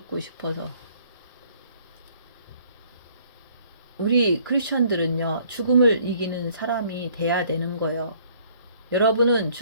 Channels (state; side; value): inverted; both; correlation -0.60